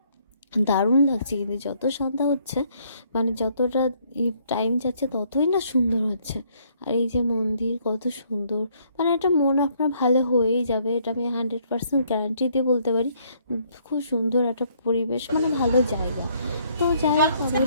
দারুণ লাগছে। কিন্তু যত সন্ধ্যা হচ্ছে, মানে যতটা টাইম যাচ্ছে ততই না সুন্দর হচ্ছে। আর এই যে মন্দির কত সুন্দর, মানে এটা মন আপনার ভালো হয়েই যাবে, এটা আমি 100% গ্যারান্টি দিয়ে বলতে পারি। খুব সুন্দর একটা পরিবেশ, মানে ভালো জায়গা। তো যাই হোক, আমরা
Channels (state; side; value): inverted; both; correlation -0.67